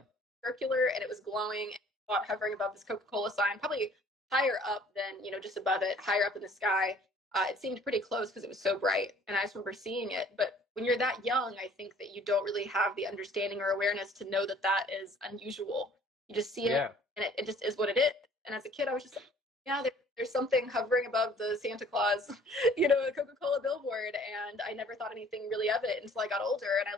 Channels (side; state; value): both; normal; correlation 0.55